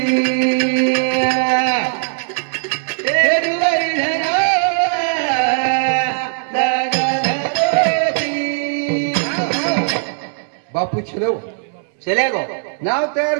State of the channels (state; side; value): silent; left; digital silence